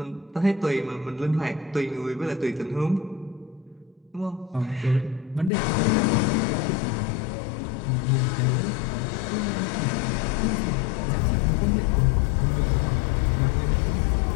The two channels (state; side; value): drops out; right; at 5.5 s